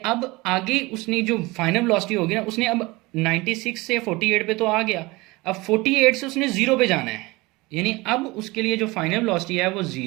आगे उसने जो फाइनल वेलोसिटी होगी ना, उसने अब 96 से 48 पे तो आ गया, अब 48 से उसने 0 पे जाना है, यानी अब उसके लिए जो फाइनल वेलोसिटी है वो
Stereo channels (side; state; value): left; quieter; 22.6 dB